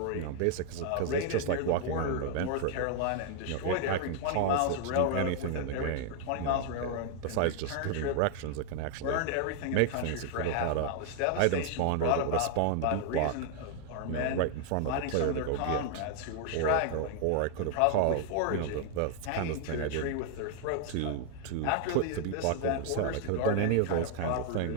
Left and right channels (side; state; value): both; different; correlation 0.00